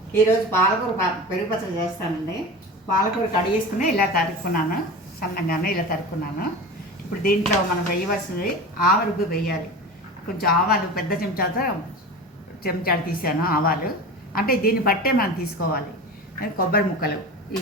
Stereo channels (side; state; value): both; normal; correlation 0.31